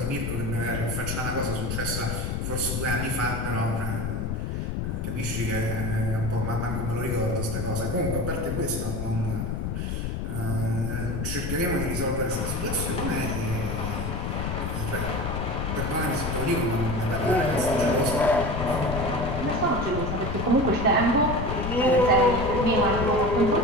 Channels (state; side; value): noise; left; rumble, 2 dB below the sound